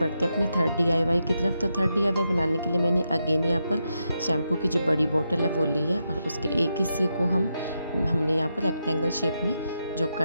अपने थर्ड DIY की तरफ। तो थर्ड DIY बनाने के लिए मैंने अगेन यहाँ पर शैम्पू की जो बड़ी बोतल है वो ली है, और उसके एक हिस्से को हमने यहाँ पर रेक्टेंगल शेप में जो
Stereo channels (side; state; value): both; inverted; correlation -0.85